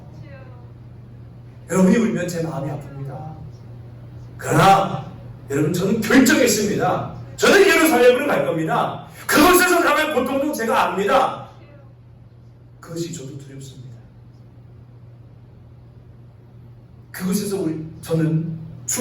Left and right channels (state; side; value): identical; both; correlation 1.00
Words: 여러분이 울면 제 마음이 아픕니다. 그러나 여러분 저는 결정했습니다. 저는 예루살렘으로 갈 겁니다. 그곳에서 당할 고통도 제가 압니다. 그것이 저도 두렵습니다. 그곳에서 저는